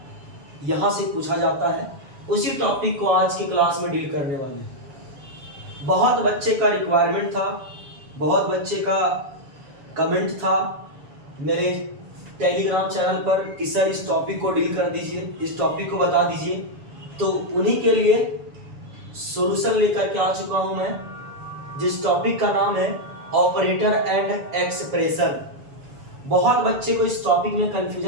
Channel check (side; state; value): left; late; 7.1 ms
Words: यहां से पूछा जाता है। उसी टॉपिक को आज की क्लास में डील करने वाले हैं। बहुत बच्चे का रिक्वायरमेंट था, बहुत बच्चे का कमेंट था मेरे टेलीग्राम चैनल पर कि सर इस टॉपिक को डील कर दीजिए, इस टॉपिक को बता दीजिए। तो उन्हीं के लिए सॉल्यूशन लेकर के आ चुका हूं मैं, जिस टॉपिक का नाम है ऑपरेटर एंड एक्सप्रेशन। बहुत बच्चे को इस टॉपिक में